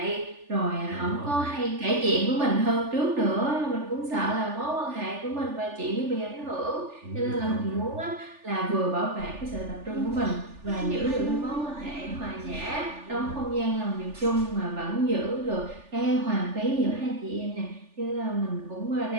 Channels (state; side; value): late; left; 3.4 ms